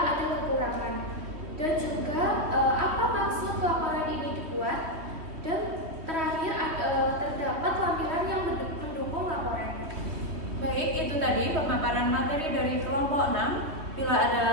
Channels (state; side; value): late; left; 3.2 ms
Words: ada kekurangan. Dan juga apa maksud laporan ini dibuat, dan terakhir terdapat lampiran yang mendukung laporan. Baik, itu tadi pemaparan materi dari kelompok 6. Bila